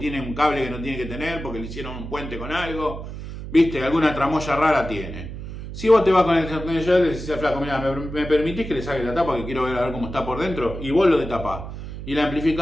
un cable que no tiene que tener porque le hicieron un puente con algo. ¿Viste? Alguna tramoya rara tiene. Si vos te vas con el destornillador y le decís al flaco, mira, ¿me permitís que le saque la tapa que quiero ver a ver cómo está por dentro? Y vos lo detapás. Y el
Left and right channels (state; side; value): noise; right; hum, 9 dB below the sound